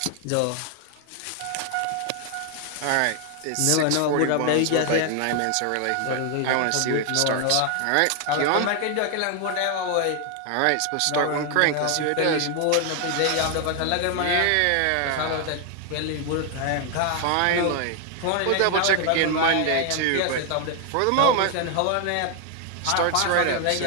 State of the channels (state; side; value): different; both; correlation 0.00